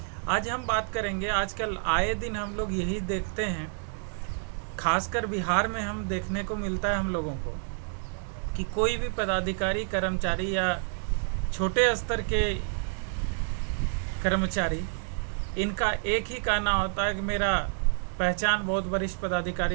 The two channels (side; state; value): left; silent; digital silence